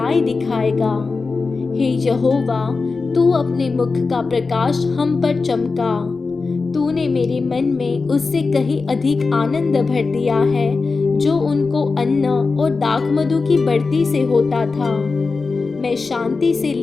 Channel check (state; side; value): quieter; right; 4.2 dB